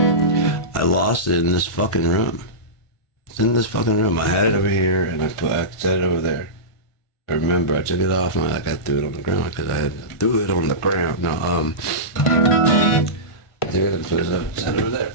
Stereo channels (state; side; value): late; right; 1.5 ms